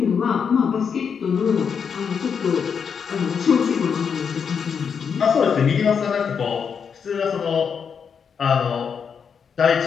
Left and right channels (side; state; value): right; quieter; 6.7 dB